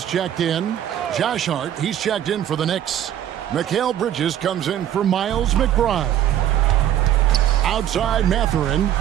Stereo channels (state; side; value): quieter; left; 11.1 dB